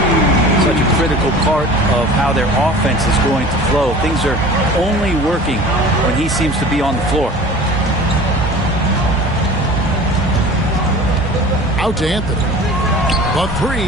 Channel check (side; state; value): both; normal; correlation 0.42